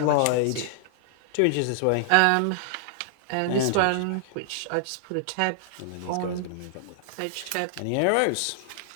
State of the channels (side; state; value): both; different; correlation -0.01